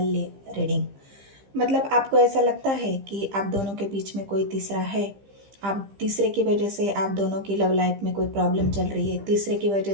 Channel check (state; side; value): late; left; 15 ms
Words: रीडिंग। मतलब आपको ऐसा लगता है कि आप दोनों के बीच में कोई तीसरा है। आप तीसरे की वजह से आप दोनों की लव लाइफ में कोई प्रॉब्लम चल रही है। तीसरे की